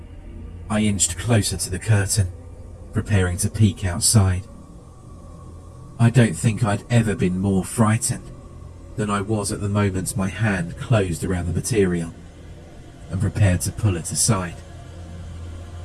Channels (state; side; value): identical; both; correlation 1.00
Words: I inched closer to the curtain, preparing to peek outside. I don't think I'd ever been more frightened than I was at the moment my hand closed around the material and prepared to pull it aside.